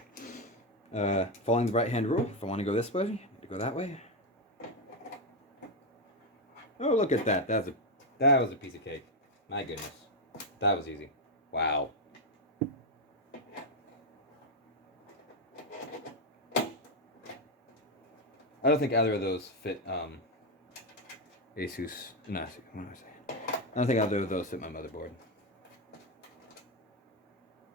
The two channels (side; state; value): both; normal; correlation 0.05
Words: Following the right-hand rule, if I want to go this way, I need to go that way. Oh, look at that. That was a piece of cake. My goodness. That was easy. Wow. I don't think either of those fit Asus. No, what am I saying? I don't think either of those fit my motherboard.